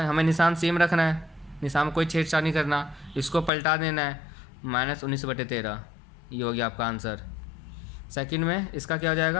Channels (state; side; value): drops out; right; at 3.5 s